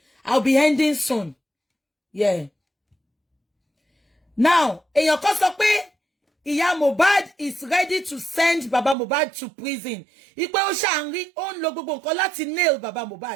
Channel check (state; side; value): drops out; left; at 9.0 s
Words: I'll be ending soon. Yeah. Now, èèyàn kan sọ pé ìyá Mohbad is ready to send Baba Mohbad to prison. Ipe ó ṣàǹrí, ó ń lo gbogbo nǹkan láti nail Baba